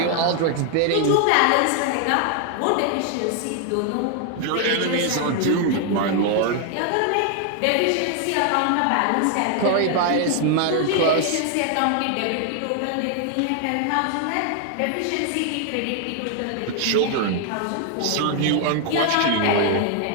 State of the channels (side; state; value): both; different; correlation 0.00